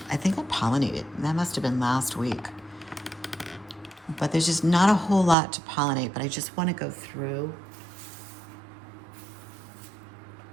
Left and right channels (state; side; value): drops out; left; at 5.4 s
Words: I think I pollinated. That must have been last week. But there's just not a whole lot to pollinate. But I just want to go through.